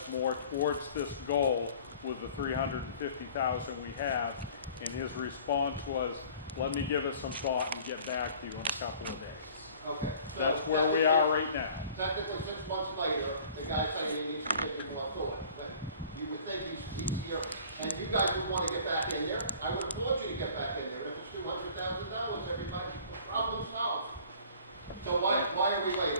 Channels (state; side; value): inverted; both; correlation -0.49